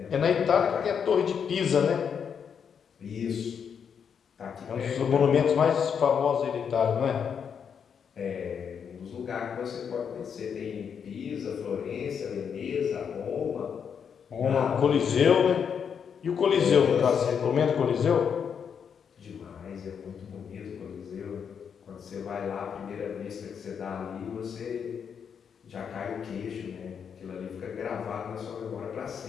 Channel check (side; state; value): right; quieter; 7.2 dB